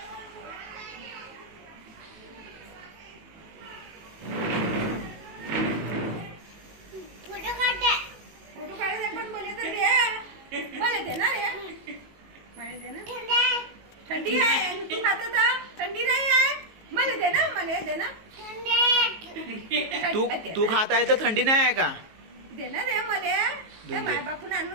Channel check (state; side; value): late; left; 19 ms